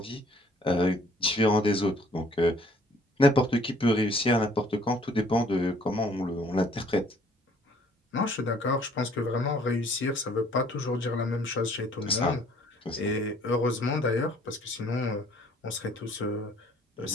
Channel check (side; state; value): both; normal; correlation 0.59